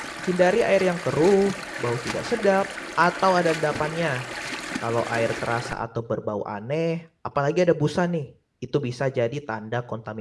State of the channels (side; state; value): both; identical; correlation 1.00